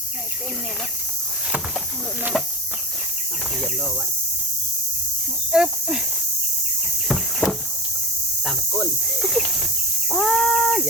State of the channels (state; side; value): normal; both; correlation 0.25